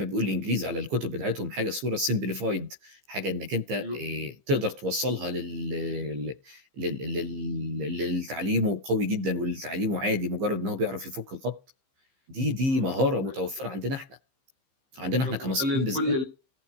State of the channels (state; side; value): late; left; 15 ms